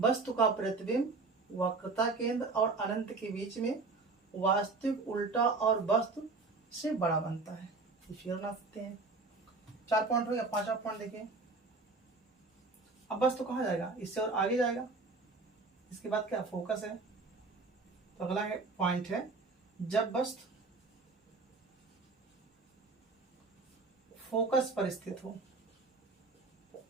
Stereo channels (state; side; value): quieter; left; 3.8 dB